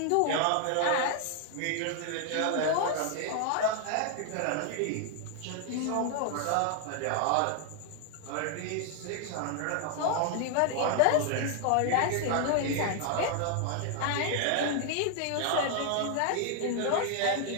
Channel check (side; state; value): both; different; correlation 0.00